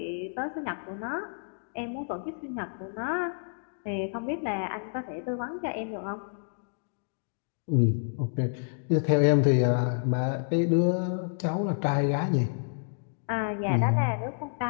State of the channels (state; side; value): silent; right; digital silence